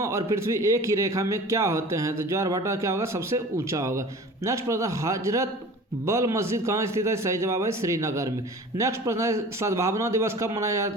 और पृथ्वी एक ही रेखा में क्या होते हैं? तो ज्वार भाटा क्या होगा? सबसे ऊंचा होगा। नेक्स्ट प्रश्न, हजरत बल मस्जिद कहाँ स्थित है? सही जवाब है श्रीनगर में। नेक्स्ट प्रश्न है, सद्भावना दिवस कब मनाया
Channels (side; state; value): both; normal; correlation 0.41